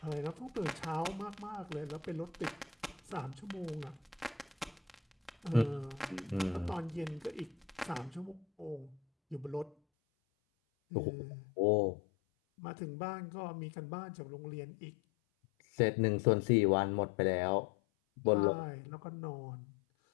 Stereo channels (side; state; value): right; drops out; at 9.8 s